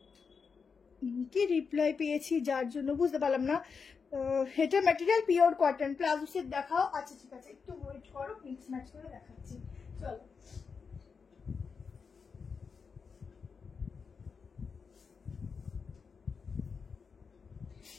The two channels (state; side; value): quieter; right; 5.5 dB